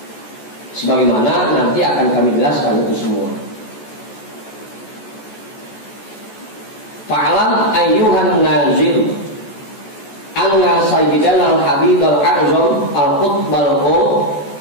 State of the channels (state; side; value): late; right; 14 ms